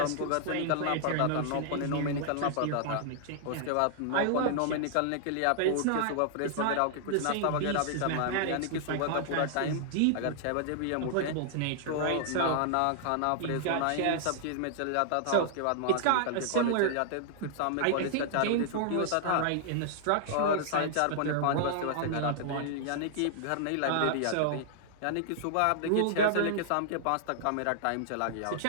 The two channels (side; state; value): both; different; correlation -0.01